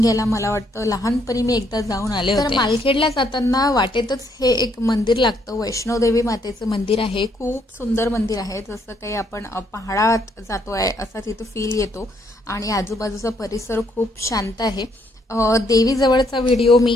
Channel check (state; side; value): normal; both; correlation 0.71